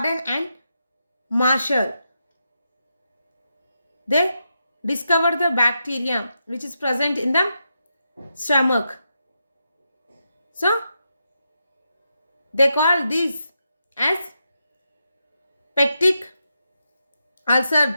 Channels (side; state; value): both; inverted; correlation -0.85